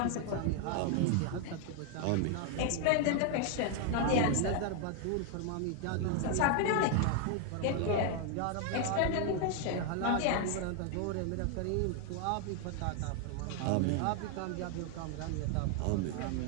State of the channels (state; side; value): different; both; correlation 0.00